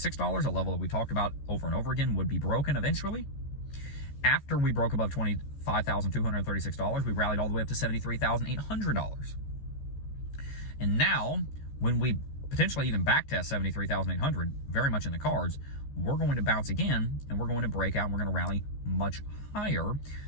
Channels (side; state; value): right; late; 14 ms